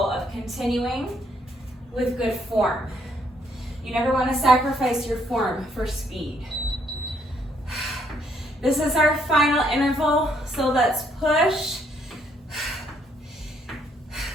of continuing with good form. You never want to sacrifice your form for speed. This is our final interval, so let's push.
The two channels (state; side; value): normal; both; correlation 0.70